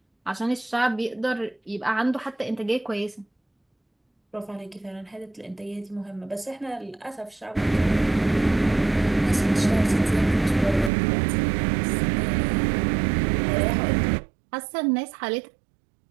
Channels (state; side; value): drops out; left; at 10.9 s